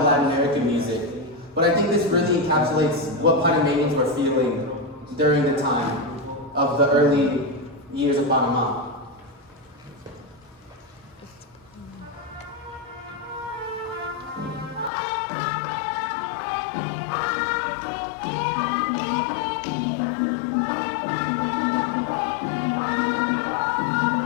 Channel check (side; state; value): right; drops out; at 14.9 s